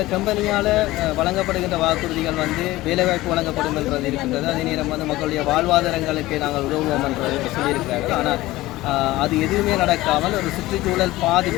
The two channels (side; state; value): right; quieter; 17.9 dB